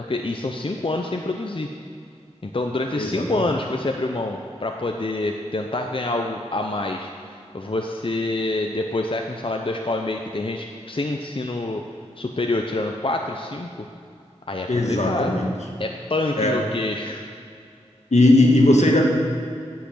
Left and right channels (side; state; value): both; normal; correlation 0.74